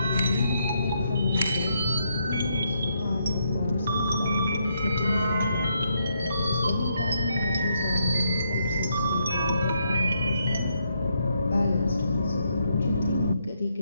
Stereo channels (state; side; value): inverted; both; correlation -0.77